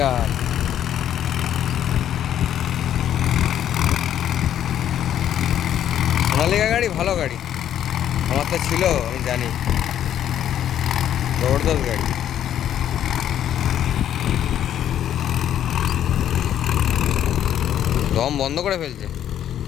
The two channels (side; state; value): right; quieter; 10.6 dB